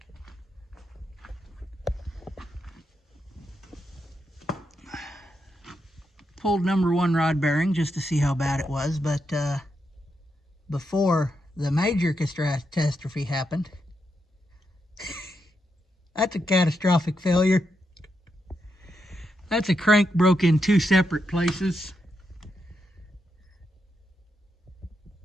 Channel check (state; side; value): normal; both; correlation 0.83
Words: Pulled number 1 rod bearing just to see how bad it was, but before the major catastrophe happened, that's a catastrophic failure. That's a crank broke in 2 separate places.